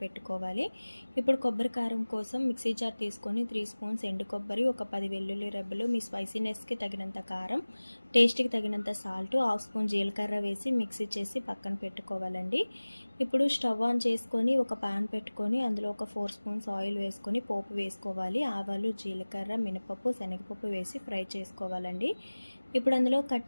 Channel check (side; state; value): both; inverted; correlation -1.00